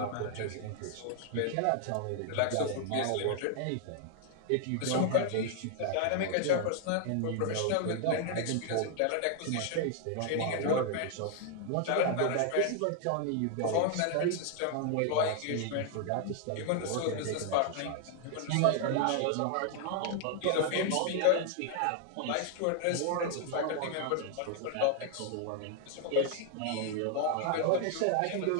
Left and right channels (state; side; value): different; both; correlation 0.00